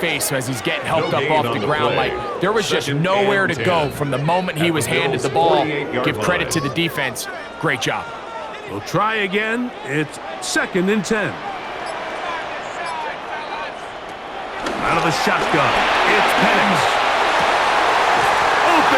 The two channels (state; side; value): identical; both; correlation 1.00